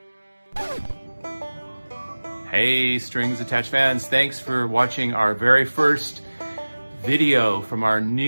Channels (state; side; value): inverted; both; correlation -1.00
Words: Hey, Strings Attached fans, thanks for watching our very first video from our